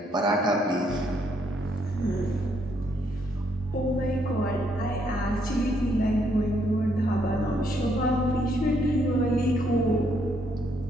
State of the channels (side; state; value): both; normal; correlation 0.72